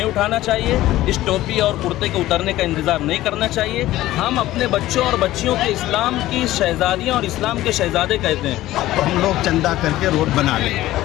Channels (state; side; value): quieter; right; 15.6 dB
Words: اٹھانا چاہیے، اس ٹوپی اور کرتے کے اترنے کا انتظار نہیں کرنا چاہیے۔ ہم اپنے بچوں اور بچیوں کے اسلام کی شہزادیاں اور اسلام کے شہزادے کہتے ہیں، تو ہم لوگ چندہ کر کے روڈ بنا لیں۔